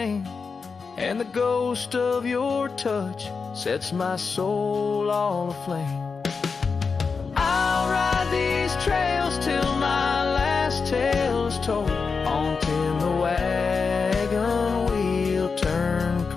and the ghost of your touch sets my soul all aflame. I'll ride these trails till my last tale is told, on till the wagon wheel turn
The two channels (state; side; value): quieter; right; 5.0 dB